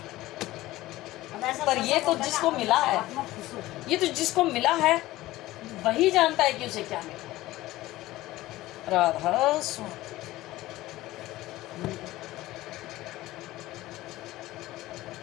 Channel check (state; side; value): quieter; right; 17.0 dB